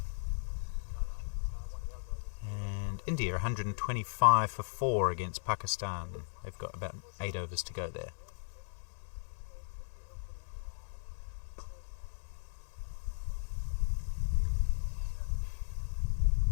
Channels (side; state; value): right; silent; 53 dB below the other